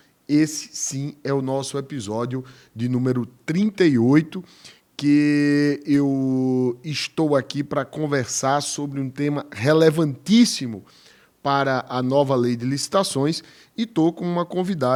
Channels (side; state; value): both; identical; correlation 1.00